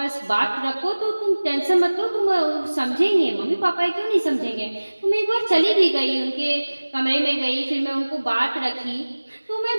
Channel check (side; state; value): both; inverted; correlation -1.00